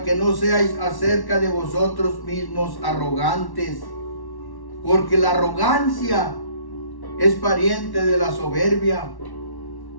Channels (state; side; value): late; right; 1.1 ms